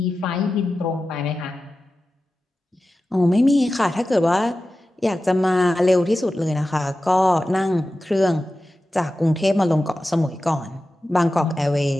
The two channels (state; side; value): normal; both; correlation 0.94